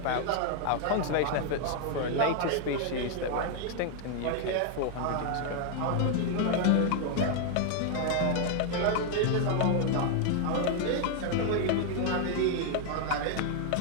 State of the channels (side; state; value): both; different; correlation 0.00